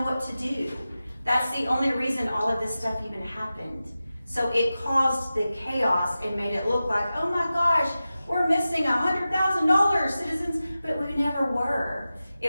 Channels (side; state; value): both; inverted; correlation -0.94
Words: what to do. That's the only reason all of this stuff even happened. So it caused the chaos and made it look like, oh my gosh, we're missing $100,000, citizens, but we never were.